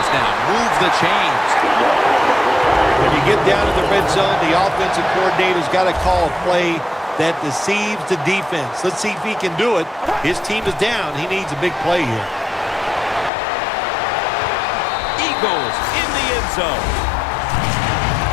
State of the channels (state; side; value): drops out; right; at 13.3 s